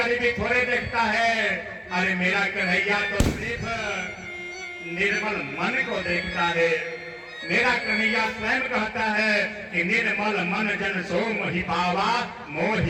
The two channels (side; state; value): both; identical; correlation 1.00